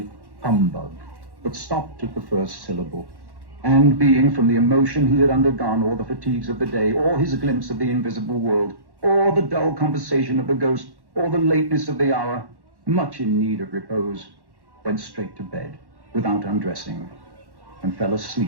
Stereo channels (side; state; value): left; late; 1.1 ms